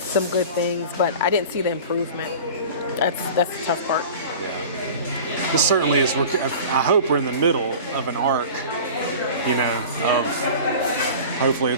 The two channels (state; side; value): inverted; both; correlation -0.38